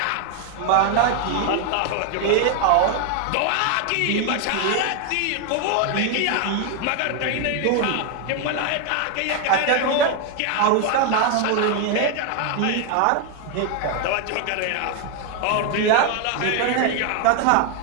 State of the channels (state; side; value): different; both; correlation 0.01